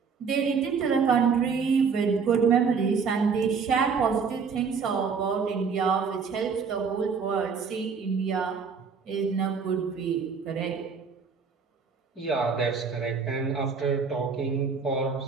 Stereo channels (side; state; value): left; quieter; 5.7 dB